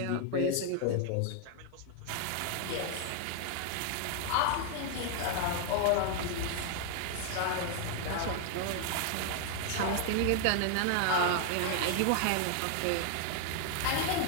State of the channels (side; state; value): both; different; correlation 0.00